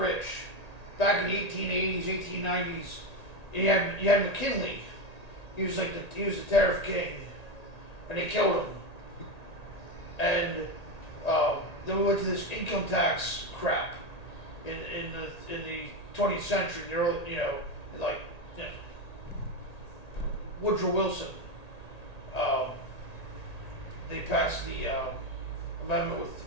back in the 1880s, 1890s. You had McKinley. He was the tariff king, and they killed him. And then we went to this income tax crap in the 20th century, the early, Woodrow Wilson. They passed the amendment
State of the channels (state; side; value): late; right; 1.8 ms